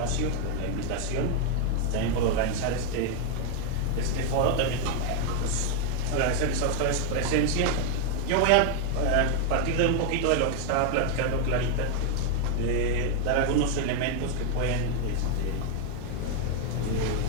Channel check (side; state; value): both; different; correlation 0.01